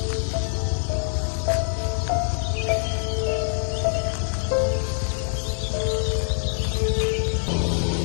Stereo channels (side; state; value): right; silent; digital silence